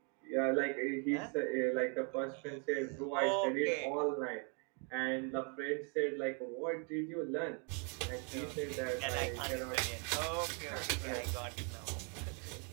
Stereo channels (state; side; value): quieter; left; 38.1 dB